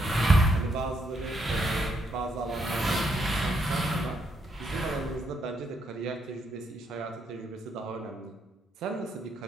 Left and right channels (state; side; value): normal; both; correlation 0.76